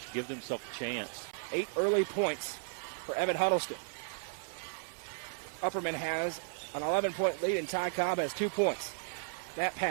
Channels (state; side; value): silent; left; 55 dB below the other